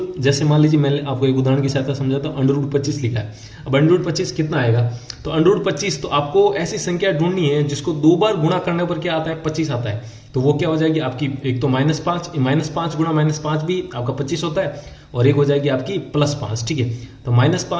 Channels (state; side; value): identical; both; correlation 1.00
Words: जैसे मान लीजिए मैं आपको एक उदाहरण की सहायता समझाता हूँ, अंडरवुड 25 लिखा है। अब अंडरवुड 25 कितना आएगा, तो अंडरवुड 25, तो आपको ऐसी संख्या ढूंढनी है जिसको 2 बार गुणा करने पर क्या आता है 25 आता है। तो वो क्या हो जाएगी आपकी, एक तो -5 गुणा -5 भी आपका 25 होता है और एक हो जाएगी आपकी +5, ठीक है। तो